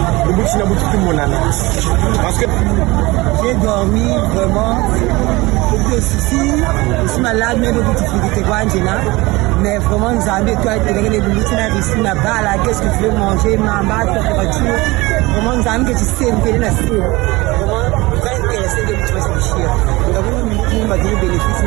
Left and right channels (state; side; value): quieter; left; 22.1 dB